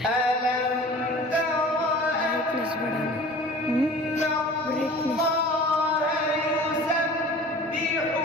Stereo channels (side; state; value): both; normal; correlation 0.43